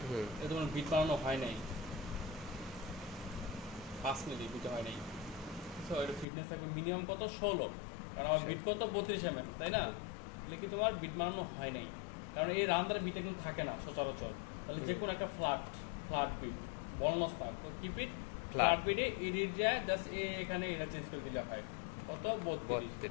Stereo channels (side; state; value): right; drops out; at 6.2 s